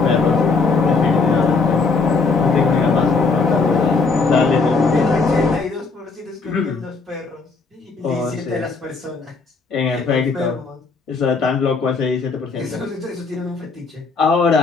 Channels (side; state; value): right; quieter; 4.4 dB